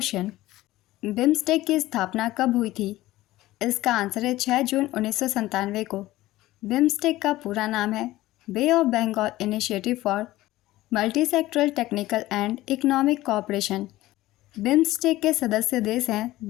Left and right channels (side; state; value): right; quieter; 16.8 dB